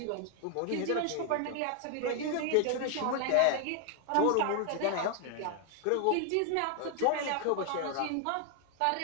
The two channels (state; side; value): different; both; correlation 0.00